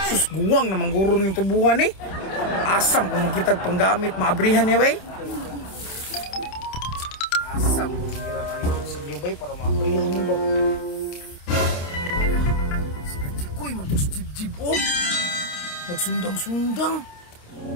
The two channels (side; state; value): right; late; 28 ms